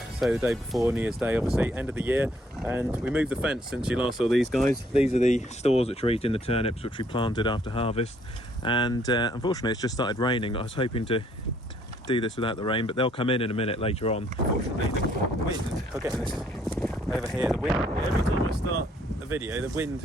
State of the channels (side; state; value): both; normal; correlation 0.66